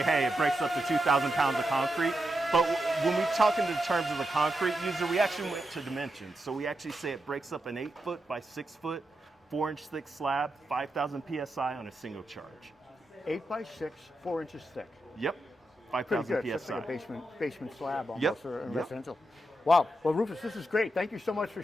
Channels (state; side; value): normal; both; correlation 0.86